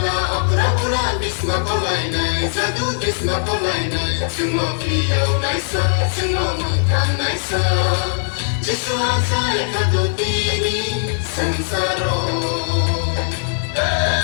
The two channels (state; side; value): silent; right; 60 dB below the other